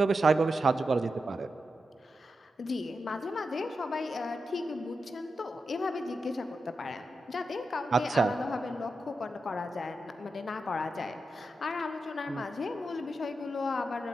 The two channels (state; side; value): normal; both; correlation 0.88